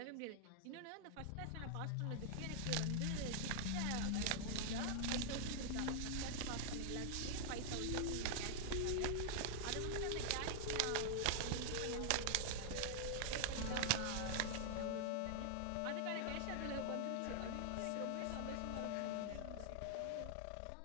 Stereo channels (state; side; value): different; both; correlation -0.01